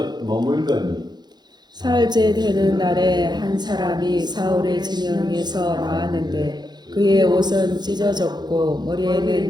사흘째 되는 날에 한 사람이 사울의 진영에서 나왔는데 그의 옷은 찢어졌고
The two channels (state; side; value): late; left; 0.21 ms